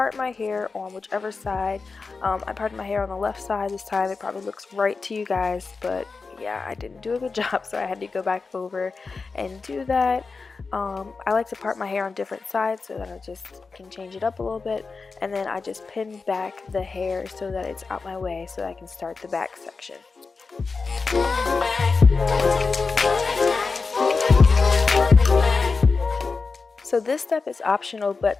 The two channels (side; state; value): right; quieter; 4.4 dB